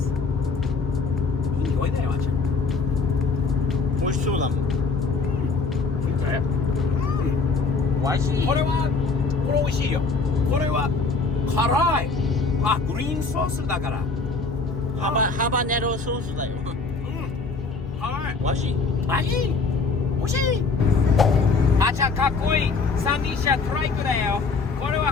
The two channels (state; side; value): quieter; right; 4.4 dB